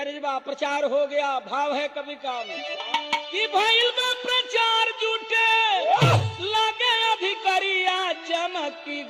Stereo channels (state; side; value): identical; both; correlation 1.00